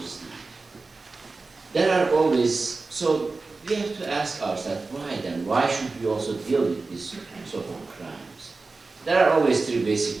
There are always, so we have to ask ourselves, why then? Why should we also deal with these sort of crimes? There are always three basic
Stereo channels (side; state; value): left; quieter; 3.8 dB